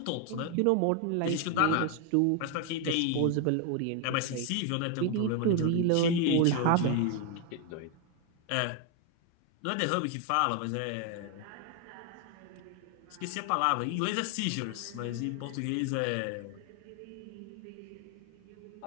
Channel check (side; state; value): both; different; correlation 0.01